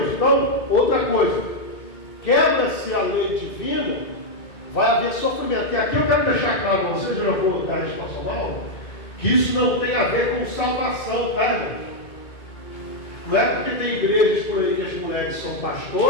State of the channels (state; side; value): late; right; 2.2 ms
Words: Então, outra coisa, quebra-se a lei divina, vai haver sofrimento. E aqui eu quero deixar claro para vocês, eu já vou dar a resposta, que isso não tem a ver com salvação, tá, irmãos? Não é porque tem igrejas por aí que as mulheres são